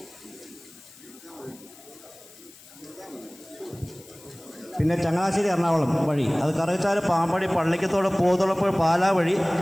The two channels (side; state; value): left; noise; hiss, 22 dB below the sound